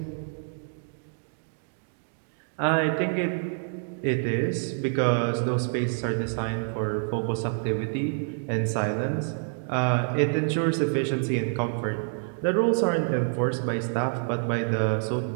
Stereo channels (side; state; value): left; silent; 60 dB below the other